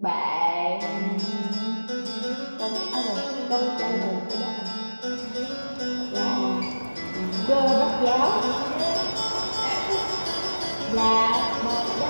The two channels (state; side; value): inverted; both; correlation -1.00